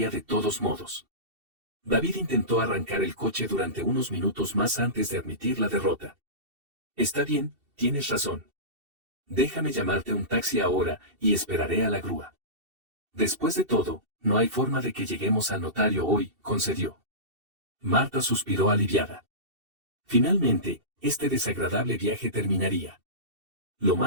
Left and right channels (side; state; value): left; late; 2.7 ms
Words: de todos modos. David intentó arrancar el coche durante unos minutos más antes de admitir la derrota. «Está bien, tienes razón. Déjame llamarte un taxi ahora y esperaré a la grúa. Después de todo, no hay forma de que lleguemos al notario hoy», concedió. Marta suspiró aliviada. Finalmente, este desagradable viaje terminaría. Lo